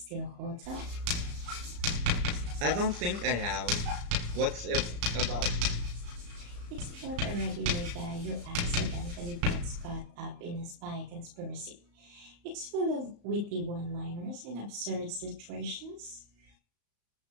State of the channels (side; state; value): left; late; 34 ms